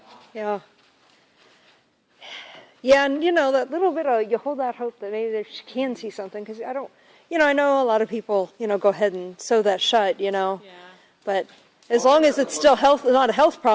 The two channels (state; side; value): identical; both; correlation 1.00